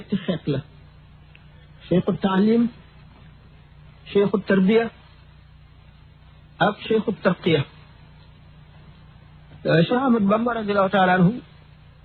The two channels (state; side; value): identical; both; correlation 1.00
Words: xeet la cheikhu taalim cheikhu tarbiya ak cheikhu tarqiya Cheikh Ahmad Bamba radiallahu taala anhu